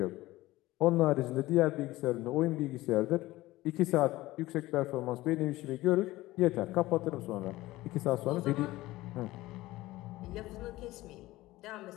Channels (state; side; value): quieter; right; 17.9 dB